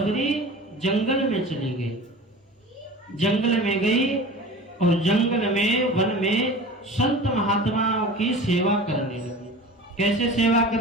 जंगल में चली गई, जंगल में गई और जंगल में, वन में संत महात्माओं की सेवा करने लगी। कैसे सेवा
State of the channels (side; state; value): both; normal; correlation 0.37